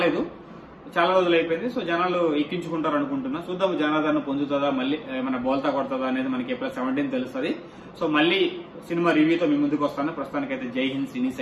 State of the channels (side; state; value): both; identical; correlation 1.00